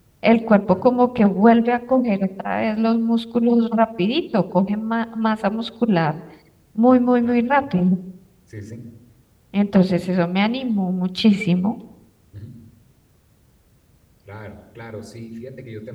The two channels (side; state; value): both; identical; correlation 1.00